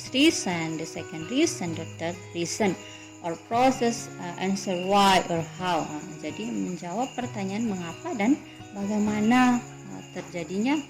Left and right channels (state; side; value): identical; both; correlation 1.00